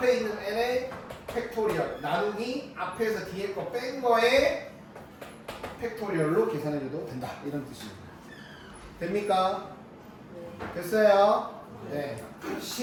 있는 n의 팩토리얼 나누기 앞에서 뒤에 거 뺀 거에 팩토리얼로 계산해줘도 된다. 이런 뜻입니다. 됩니까? 됐어요? 네.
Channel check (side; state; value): both; identical; correlation 1.00